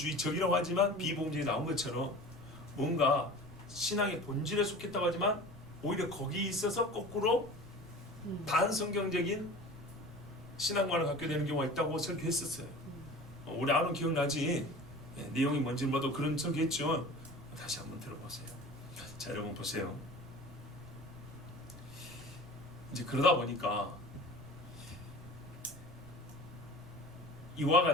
하지만 비복음주의 나온 것처럼 뭔가 신앙의 본질에 속했다고 하지만 오히려 거기 있어서 거꾸로 반성경적인 신앙관을 갖게 되는 경우가 있다고 설교했었어요. 우리 아론 기억나지? 내용이 뭔지 뭐도 그런 적이겠죠. 다시 한번 들어보세요. 자, 여러분 보세요. 이제 그러다 보니까 이와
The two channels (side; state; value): right; noise; rumble, 18 dB below the sound